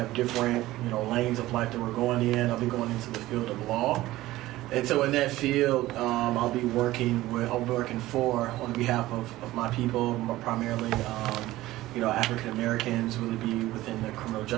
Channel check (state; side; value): quieter; left; 16.7 dB